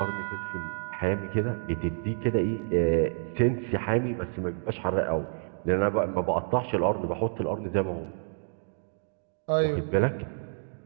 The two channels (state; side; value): silent; left; digital silence